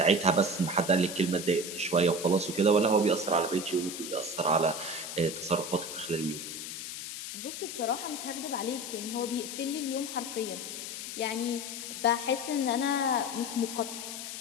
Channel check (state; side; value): noise; left; hiss, 7 dB below the sound